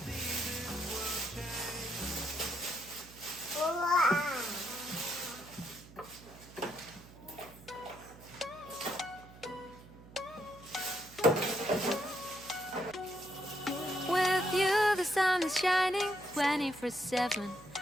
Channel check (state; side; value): noise; right; hum, 19 dB below the sound